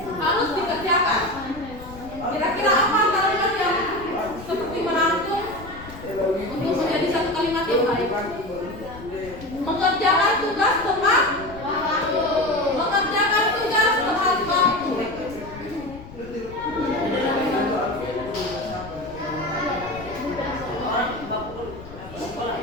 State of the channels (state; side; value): noise; left; rumble, 16 dB below the sound